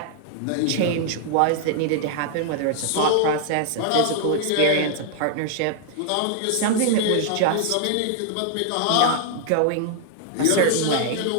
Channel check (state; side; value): different; both; correlation 0.00